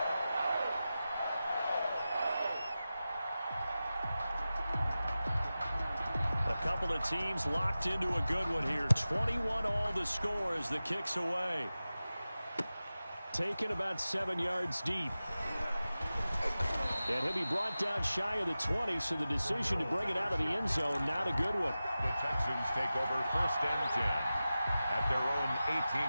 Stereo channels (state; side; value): inverted; both; correlation -0.95